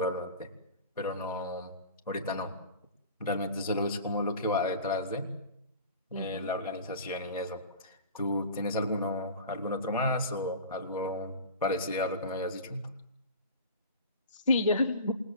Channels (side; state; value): both; inverted; correlation -0.37